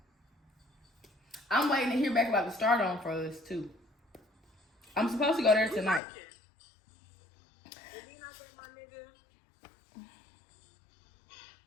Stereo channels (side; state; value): right; drops out; at 6.0 s